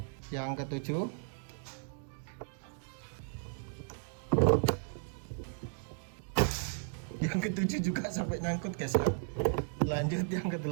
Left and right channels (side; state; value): left; silent; digital silence